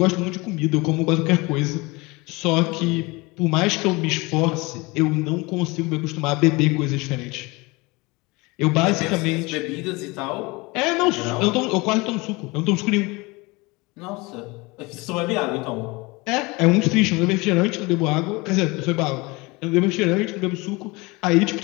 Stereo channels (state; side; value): quieter; right; 24.6 dB